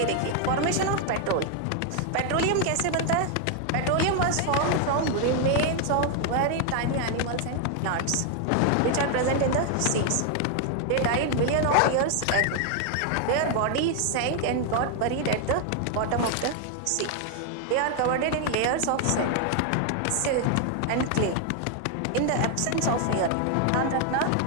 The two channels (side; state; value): both; different; correlation 0.01